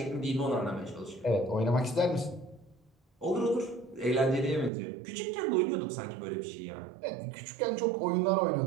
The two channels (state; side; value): drops out; left; at 4.7 s